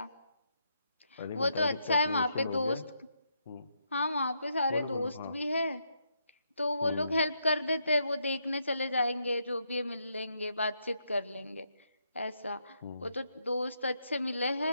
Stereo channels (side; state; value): both; inverted; correlation -0.79